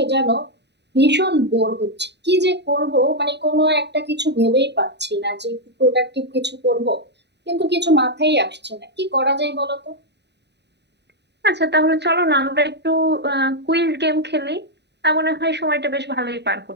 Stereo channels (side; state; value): left; late; 0.50 ms